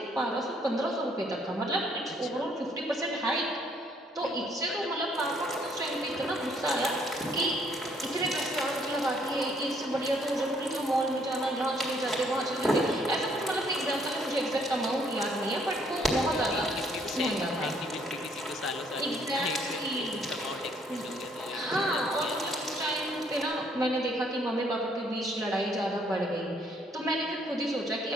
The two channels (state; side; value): normal; both; correlation 0.66